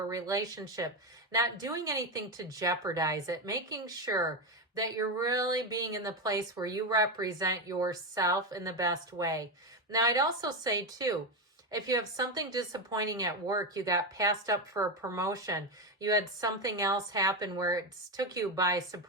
relationship, not doing anything to jeopardize it, making sure that you're really being in the place where you represent yourself in the best way. Now, I'd also say, too, if you have something disappointing at work, you got passed up for a promotion, you had something else happen where it took you by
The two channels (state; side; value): normal; both; correlation 0.13